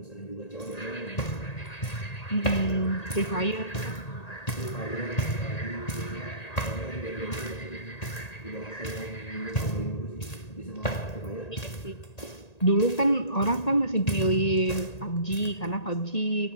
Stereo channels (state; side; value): late; right; 1.9 ms